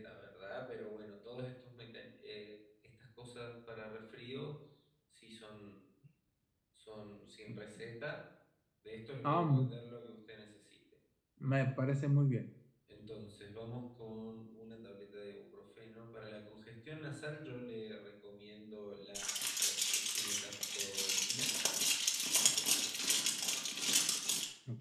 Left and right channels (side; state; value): both; identical; correlation 1.00